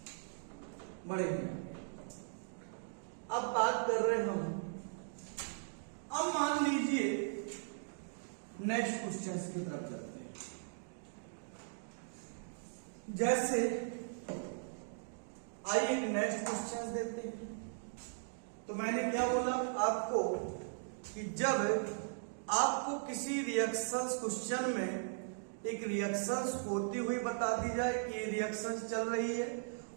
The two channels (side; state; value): left; silent; digital silence